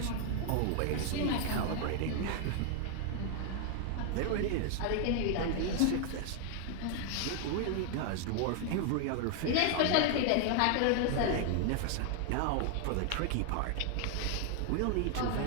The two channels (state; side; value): different; both; correlation 0.00